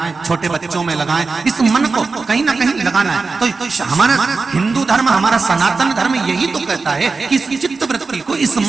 छोटे बच्चों में लगाएं। इस मन को कहीं ना कहीं लगाना है। तो हमारा हिंदू धर्म, हमारा सनातन धर्म यही तो कहता है कि इस चित्त वृत्ति को, इस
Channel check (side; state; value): left; quieter; 4.2 dB